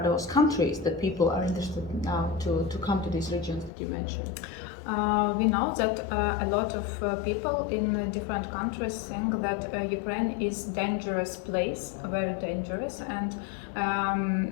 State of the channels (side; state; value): right; drops out; at 3.7 s